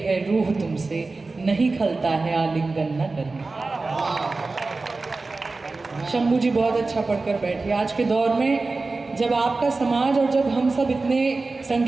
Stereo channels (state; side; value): quieter; left; 3.6 dB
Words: रूह तुमसे, नहीं खलता है आलिंगन न करना। शंभू जी बहुत अच्छा पढ़कर बैठे। आज के दौर में जब आपका समाज और जब हम सब इतने